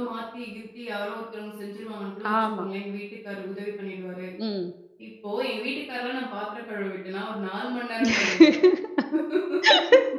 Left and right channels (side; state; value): both; identical; correlation 1.00